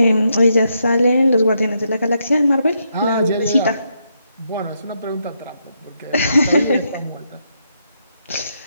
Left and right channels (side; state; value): both; inverted; correlation -0.80